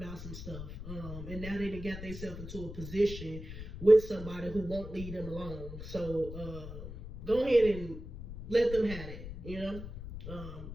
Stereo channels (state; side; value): noise; left; rumble, 10 dB below the sound